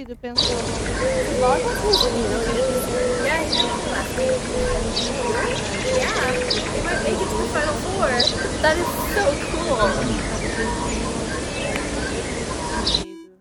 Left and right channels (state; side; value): identical; both; correlation 1.00